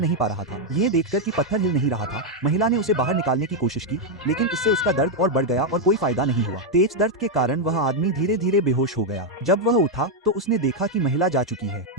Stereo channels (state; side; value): normal; both; correlation 0.01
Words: नहीं पा रहा था। ये देखकर कि पत्थर हिल नहीं रहा था, महिला ने उसे बाहर निकालने की कोशिश की, लेकिन इससे उसका दर्द और बढ़ गया और कोई फायदा नहीं हुआ। तेज दर्द के कारण वह आदमी धीरे धीरे बेहोश हो गया। जब वह उठा तो उसने देखा कि महिला जा चुकी है।